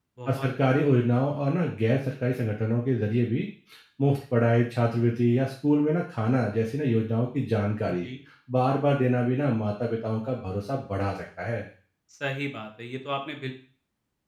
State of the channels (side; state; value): both; identical; correlation 1.00